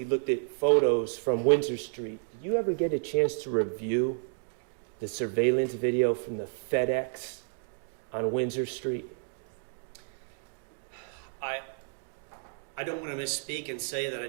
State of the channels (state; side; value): silent; left; digital silence